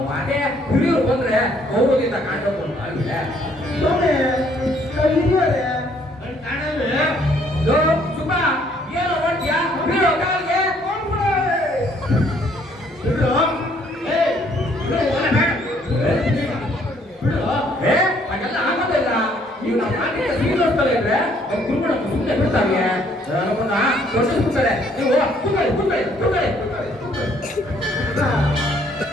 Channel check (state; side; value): normal; both; correlation 0.64